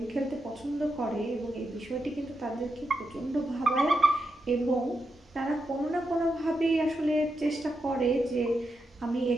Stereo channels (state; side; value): normal; both; correlation 0.85